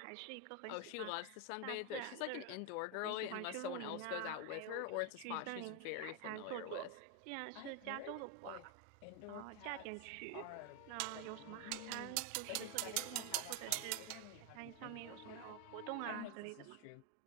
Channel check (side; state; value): both; different; correlation 0.01